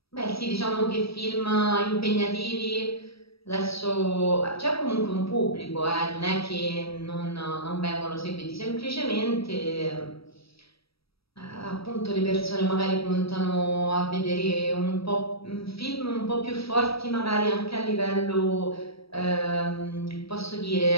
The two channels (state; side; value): late; right; 0.76 ms